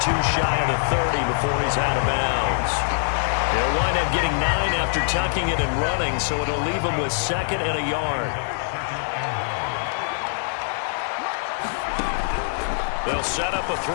2 shy of the 30 before he's out of bounds. He'll wind up getting 9 after tucking it and running, so it'll leave him with 2nd and a yard. They'll set up a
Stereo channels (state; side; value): silent; right; digital silence